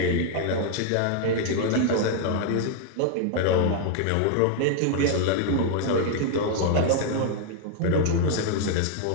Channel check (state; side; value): different; both; correlation 0.00